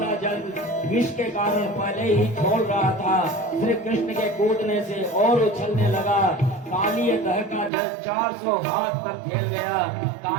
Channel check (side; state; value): left; drops out; at 7.7 s